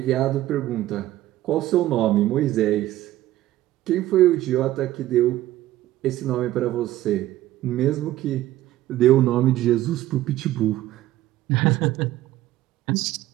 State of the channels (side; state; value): left; quieter; 14.8 dB